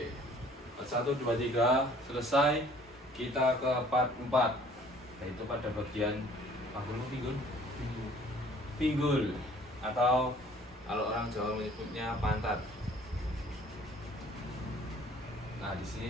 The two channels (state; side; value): normal; both; correlation 0.54